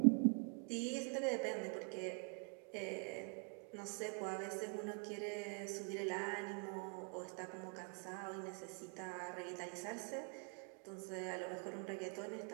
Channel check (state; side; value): quieter; left; 38.3 dB